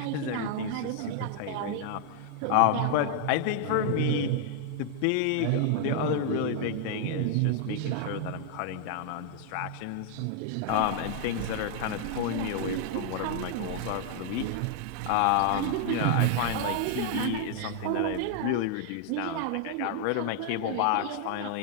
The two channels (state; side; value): different; both; correlation 0.00